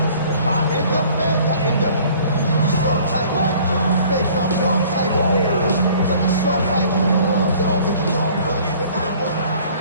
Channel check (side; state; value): both; inverted; correlation -0.52